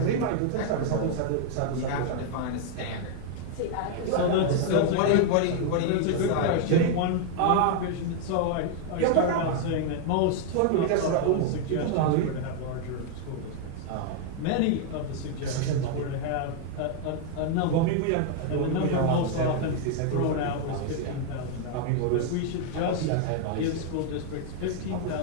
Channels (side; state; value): both; different; correlation 0.00